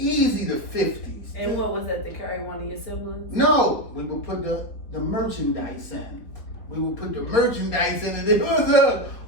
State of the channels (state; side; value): late; right; 4.5 ms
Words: the 50s. And what was that, to carry one of your siblings? No, we would put the merchandise in. We would put the merchandise in, and it was a